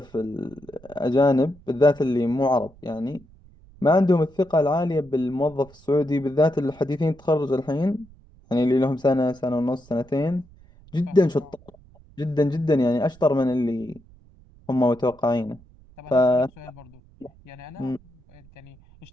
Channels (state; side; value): noise; right; rumble, 25 dB below the sound